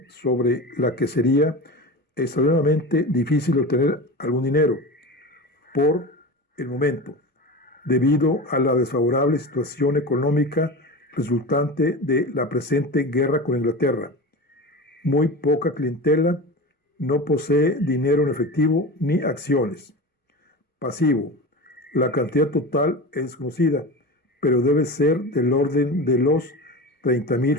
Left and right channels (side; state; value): both; normal; correlation 0.28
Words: sobre la que sería extremadamente difícil obtener algún dinero por el momento, debido a la desfavorable situación económica resultante de la presente guerra con Inglaterra. Muy poca clientela, no posee dinero en efectivo ni acciones. Pasivo: la cantidad total es desconocida, pero debe ser del orden de los 30,000